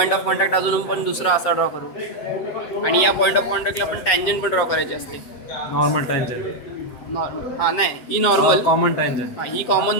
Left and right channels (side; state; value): right; late; 7.6 ms